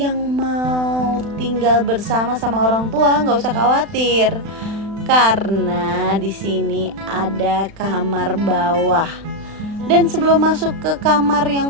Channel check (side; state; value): left; late; 36 ms